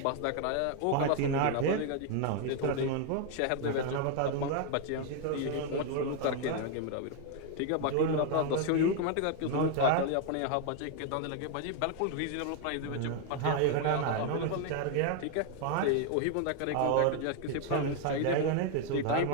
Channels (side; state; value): both; different; correlation 0.00